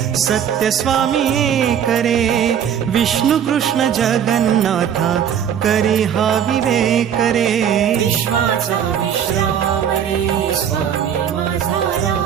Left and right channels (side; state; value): left; quieter; 8.9 dB